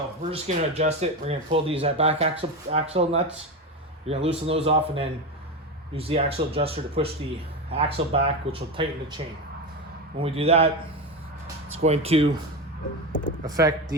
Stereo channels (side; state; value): both; normal; correlation 0.18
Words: we're just going to adjust it. We're going to pull these back axle nuts. You're going to loosen those off and then use the axle adjuster to push the axle back, which will tighten the chain. When we do that, it's going to affect